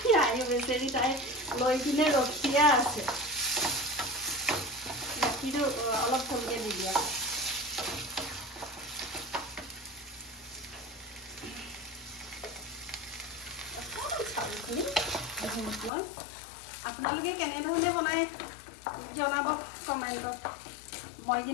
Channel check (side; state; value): right; drops out; at 15.9 s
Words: আই বেচেৰি তাই লৈ কিনে ৰখিয়া আছে গাখীৰটো অলপ কমকৈ দি দিয়া চাউলখিনি ঘিউত লৈ আপোনালোকে কেনেধৰণে বনাই জনাব কমেণ্টত মই